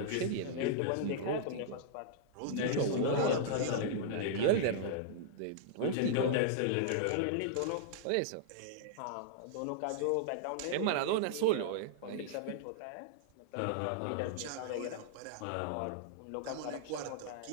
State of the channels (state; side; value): different; both; correlation -0.01